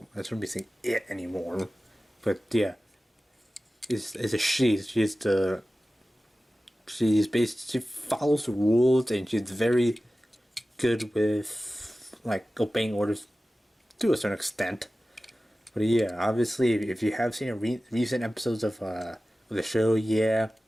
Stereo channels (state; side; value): normal; both; correlation 0.96